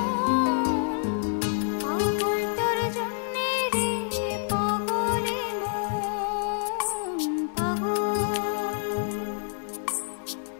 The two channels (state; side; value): silent; right; digital silence